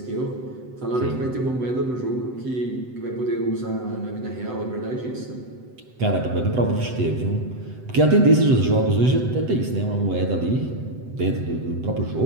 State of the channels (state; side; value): late; left; 7.9 ms